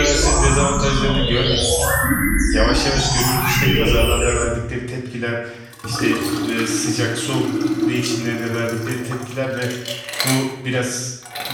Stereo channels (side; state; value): both; identical; correlation 1.00